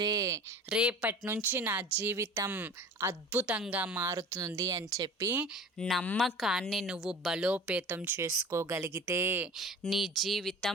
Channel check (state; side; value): normal; both; correlation 0.40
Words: రేపటి నుంచి నా జీవితం అద్భుతంగా మారుతుంది అని చెప్పి నమ్మకాన్ని నువ్వు బలోపేతం చేసుకోగలిగితే నీ